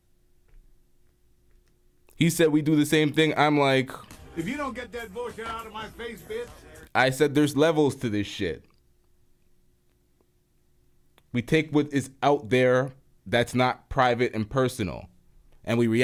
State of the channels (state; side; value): identical; both; correlation 1.00